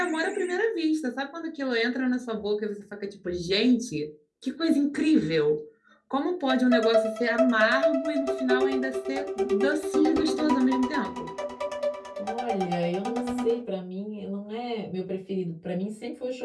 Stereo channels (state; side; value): identical; both; correlation 1.00